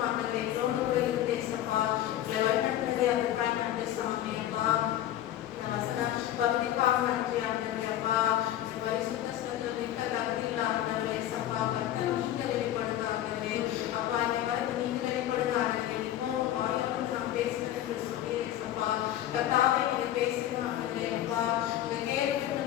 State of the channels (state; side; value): quieter; right; 12.6 dB